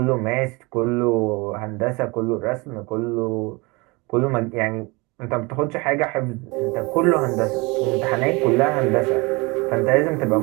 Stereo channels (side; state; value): left; quieter; 26.2 dB